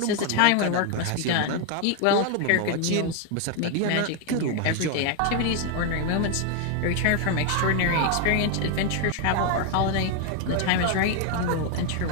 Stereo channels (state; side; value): different; both; correlation 0.01